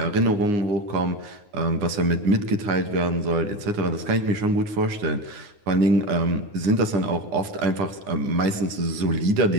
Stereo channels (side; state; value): left; late; 9.7 ms